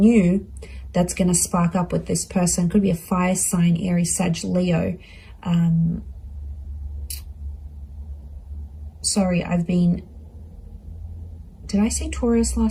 that's going to spark up with this person. Could be a fire sign, Aries, Sag, Leo. Sorry, did I say Taurus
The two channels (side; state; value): both; identical; correlation 1.00